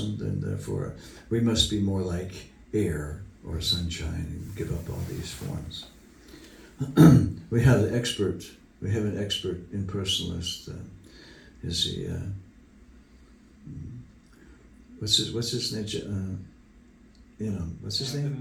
and therefore we must be more like air or sunshine and give up all these forms. We have an expert impersonalist. Is he? What's his name? What's his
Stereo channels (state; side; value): identical; both; correlation 1.00